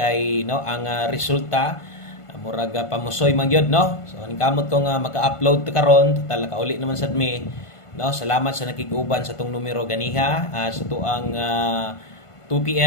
no ang resulta murag pamusoy man gyud no. So ningkamot ko nga maka-upload karon total kauli naman sad mi no. Salamat sa nakig-uban sa tong numero ganiha sa tuang 2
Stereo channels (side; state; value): right; late; 1.5 ms